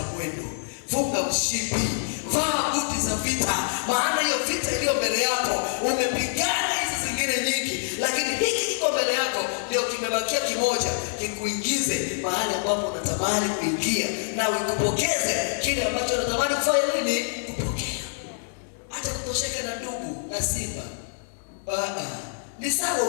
mwendo. Funga mshipi. Vaa buti za vita. Maana hiyo vita iliyo mbele yako umepigana hizi zingine nyingi, lakini hiki kiko mbele yako ndio kimebakia kimoja, kikuingize mahali ambapo unatamani kuingia na ukupokeze kile ambacho unatamani kufanya nini? Kupokea. Hata kutosheka na ndugu na simba. Ni sawa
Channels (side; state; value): right; silent; digital silence